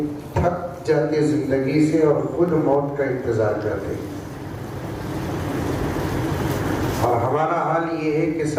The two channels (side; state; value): both; identical; correlation 1.00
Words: تھک جاتے زندگی سے اور خود موت کا انتظار کرتے، اور ہمارا حال یہ ہے کہ